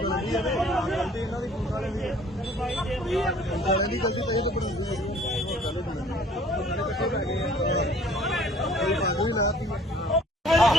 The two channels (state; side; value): normal; both; correlation 0.54